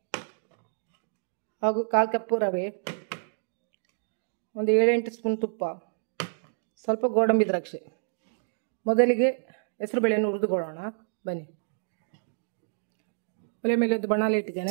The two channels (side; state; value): left; silent; digital silence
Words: ಹಾಗೂ 1/4 ಕಪ್ ರವೆ, ಒಂದು 7-8 ಸ್ಪೂನ್ ತುಪ್ಪ, ಸ್ವಲ್ಪ ಗೋಡಂಬಿ ದ್ರಾಕ್ಷಿ. ಮೊದಲಿಗೆ ಹೆಸರುಬೇಳೆಯನ್ನು ಹುರಿದುಕೊಳ್ಳೋಣ ಬನ್ನಿ. ಒಲೆ ಮೇಲೆ ಒಂದು ಬಾಣಲೆ